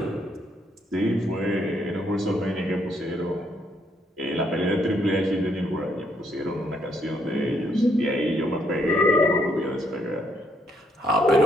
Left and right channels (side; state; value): both; normal; correlation 0.72